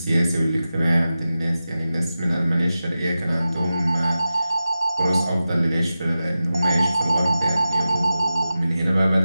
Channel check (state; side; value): inverted; both; correlation -0.93